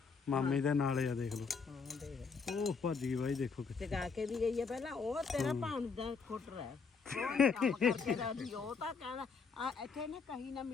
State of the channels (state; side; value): quieter; right; 5.1 dB